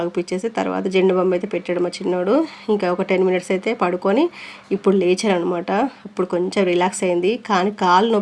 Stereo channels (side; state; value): both; identical; correlation 1.00